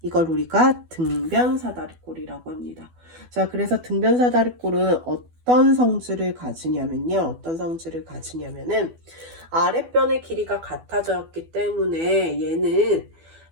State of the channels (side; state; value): left; late; 12 ms